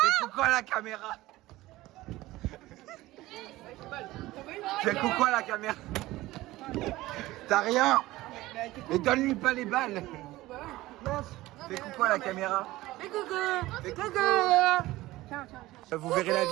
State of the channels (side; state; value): left; quieter; 17.8 dB